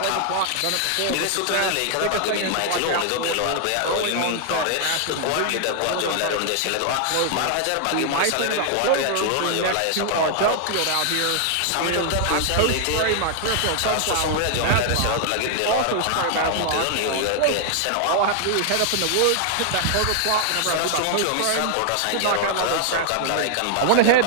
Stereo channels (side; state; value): both; different; correlation 0.00